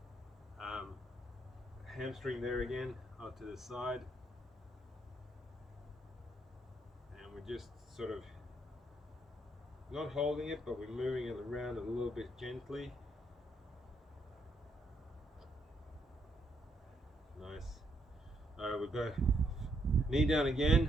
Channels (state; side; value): normal; both; correlation 0.75